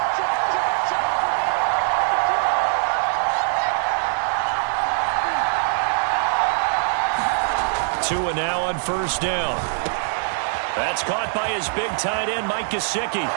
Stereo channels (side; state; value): left; silent; 64 dB below the other